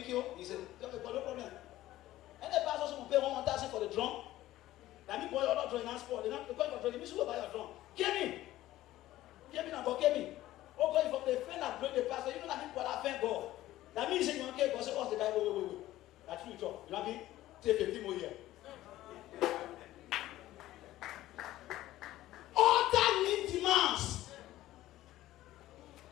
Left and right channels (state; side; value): quieter; right; 15.2 dB